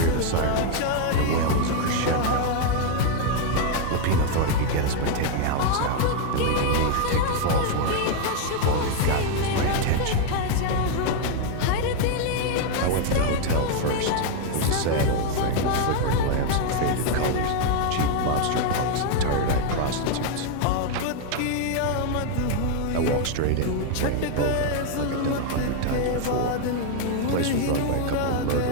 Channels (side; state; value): both; different; correlation 0.01